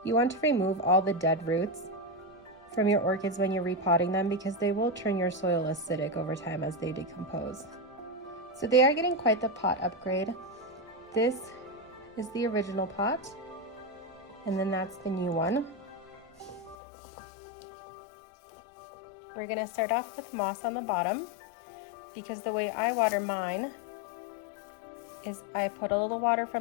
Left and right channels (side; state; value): right; drops out; at 16.8 s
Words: You want to remove all the dead roots from your orchids when you're repotting them, because they will turn your soil acidic over time as they decompose. So they are getting quite the pot upgrade. This is the original pot, and then that's the new one. We're gonna start off with moss on the bottom, because the way I water mine is I put a little water